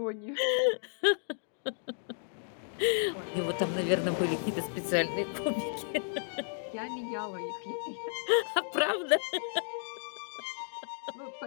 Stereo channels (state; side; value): silent; right; digital silence